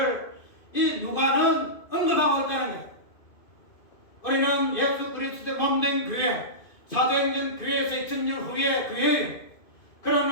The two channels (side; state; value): right; late; 2.6 ms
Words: 이 누가는 언급하고 있다는 거예요. 우리는 예수 그리스도의 몸된 교회, 사도행전 교회에서 2000년 후의 교회예요.